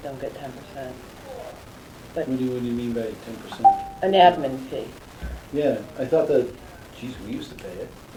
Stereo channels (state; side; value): identical; both; correlation 1.00